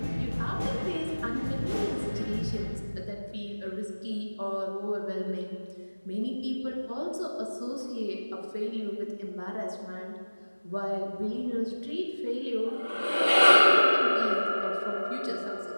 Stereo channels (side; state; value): both; inverted; correlation -1.00